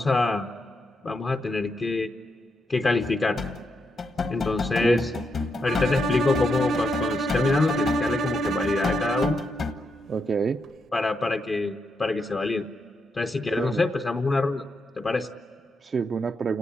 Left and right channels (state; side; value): normal; both; correlation 0.82